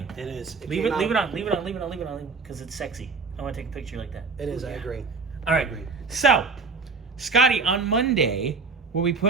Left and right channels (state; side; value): quieter; left; 4.4 dB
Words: It is. Leave it on, because it's sexy. I want to take a picture like that. It is, I agree. All right. So, Scotty, on Monday, we'll be